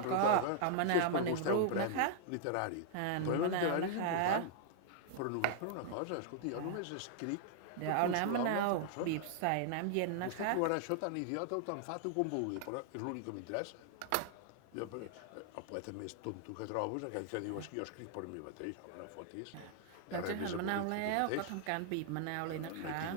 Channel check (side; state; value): both; different; correlation -0.01